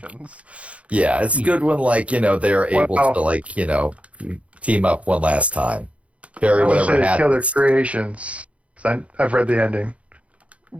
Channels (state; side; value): late; left; 0.064 ms